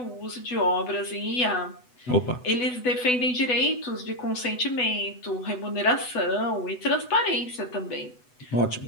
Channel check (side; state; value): right; late; 8.0 ms